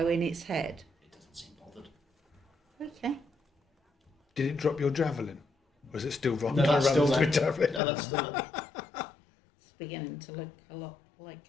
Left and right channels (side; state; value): right; drops out; at 7.8 s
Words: in its head. It doesn't seem bothered. Okay. Did it drop your javelin? Or is it still No, rocking that's around still with there. javelin? No, that's still there. It's beginning to look a lot